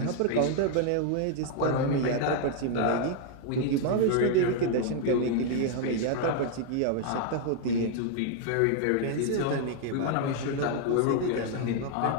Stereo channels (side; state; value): both; different; correlation 0.00